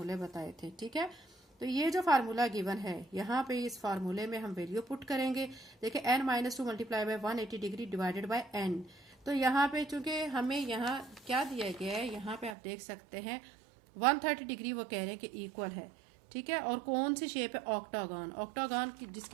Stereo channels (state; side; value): drops out; left; at 12.6 s